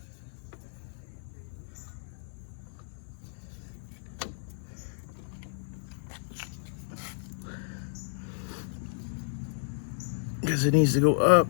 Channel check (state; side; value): silent; right; 56 dB below the other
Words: Because it needs to go up